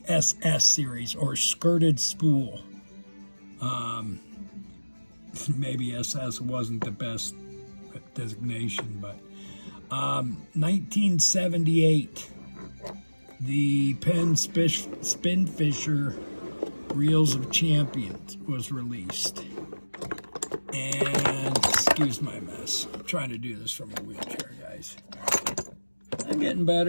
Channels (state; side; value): inverted; both; correlation -1.00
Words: SS series, or skirted spool. Maybe SS wasn't the best designation, but 1978, the Penn Spinfisher Reels of Champions was released. And excuse my mess. I'm trying to do this from a wheelchair, guys. I'm getting